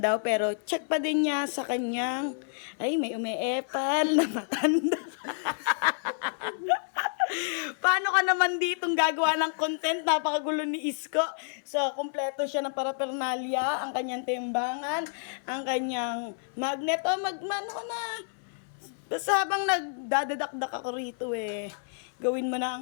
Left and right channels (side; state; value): right; silent; 57 dB below the other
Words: daw, pero check pa din niya sa kanyang, ay may umeepal na matanda. Paano ka naman ditong gagawa ng content? Napakagulo ni Isko. So, kumpleto siya ng paraphernalia, ang kanyang timbangan, ang kanyang magnet. O, ano ka na? Basta habang nagdadadakdak ako rito gawin mo na